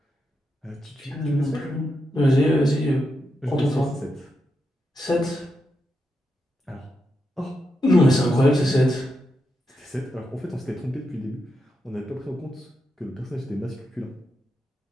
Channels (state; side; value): normal; both; correlation 0.85